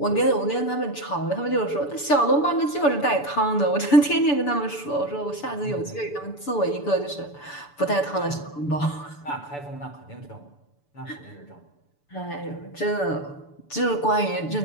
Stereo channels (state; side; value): late; right; 6.9 ms